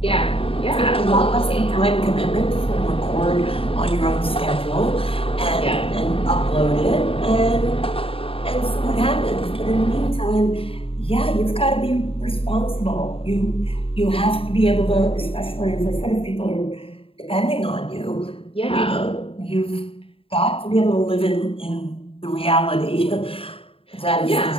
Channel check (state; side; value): late; right; 0.27 ms